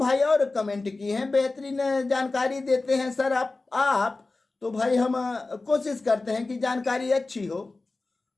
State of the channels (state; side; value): quieter; right; 3.4 dB